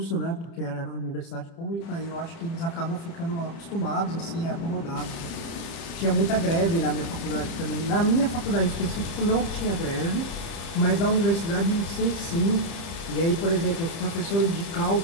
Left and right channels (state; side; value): late; right; 31 ms